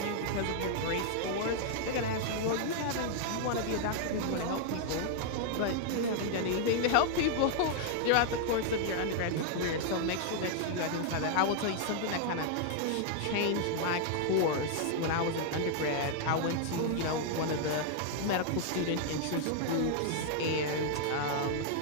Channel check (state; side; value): different; both; correlation 0.00